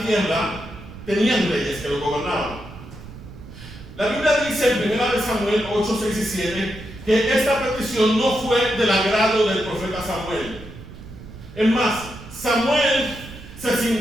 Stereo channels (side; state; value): right; noise; rumble, 15 dB below the sound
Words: tierra tenían reyes que lo gobernaban. La Biblia dice en 1 Samuel 8, 6 y 7 que esta petición no fue del agrado del profeta Samuel. Es más, Samuel se